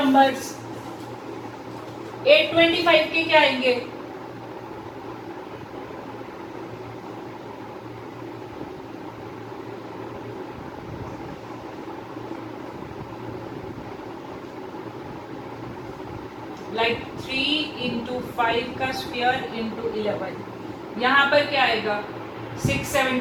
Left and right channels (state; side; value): identical; both; correlation 1.00